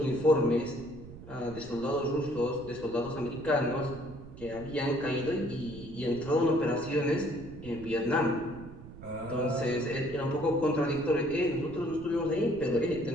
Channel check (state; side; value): noise; right; rumble, 15 dB below the sound